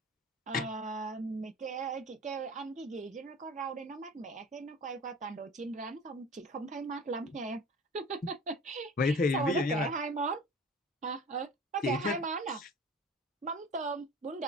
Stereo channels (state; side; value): normal; both; correlation 0.41